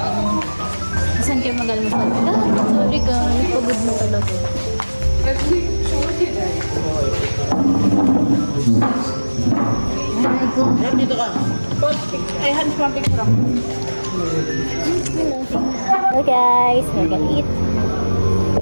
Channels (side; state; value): both; inverted; correlation -1.00